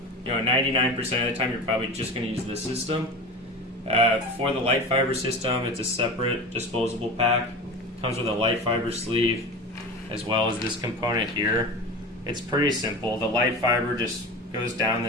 99% of the time you're probably just going to use this system. For the light fiber system, it's a separate disposable pack. Comes with a light fiber sleeve as well as this component here. It's pretty simple. The light fiber just goes down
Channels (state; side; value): normal; both; correlation 0.31